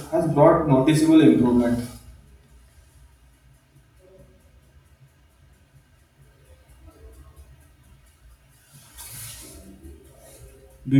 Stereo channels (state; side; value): identical; both; correlation 1.00